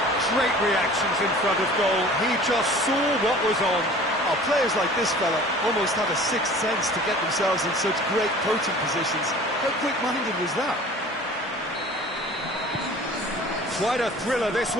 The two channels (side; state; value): both; normal; correlation 0.45